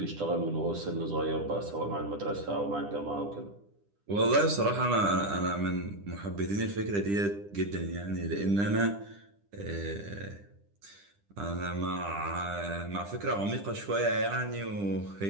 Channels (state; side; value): late; left; 10 ms